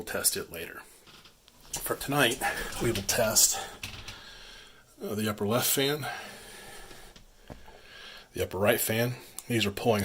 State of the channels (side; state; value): both; identical; correlation 1.00